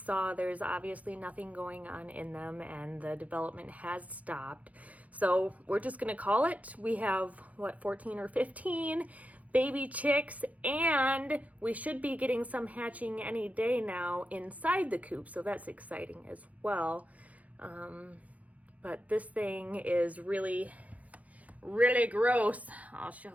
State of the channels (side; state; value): left; late; 0.070 ms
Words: there's obviously nothing going on in them, and the development has stopped. So we're just gonna call it. We have, what, 14 or 15 baby chicks, and we should be getting some hatching any day now inside the coop, so that's exciting as well. But this thing is really, really gross. I'll show